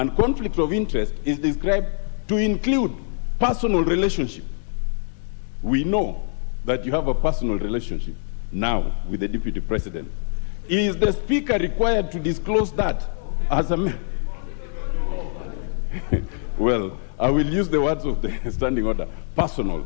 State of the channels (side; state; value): right; silent; digital silence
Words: conflict of interest is described to include personal relationship. We know that you have a personal relationship now with the Deputy President. Is the Speaker required to disclose that as a man? Well, I will use the words of the standing order, personal,